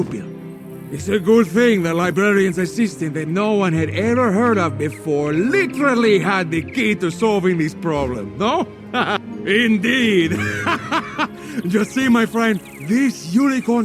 It's a good thing the librarian's assistant that no one had ever heard of before literally had the key to solving this problem, no? Indeed. Just see, my friend, this unicorn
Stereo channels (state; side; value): identical; both; correlation 1.00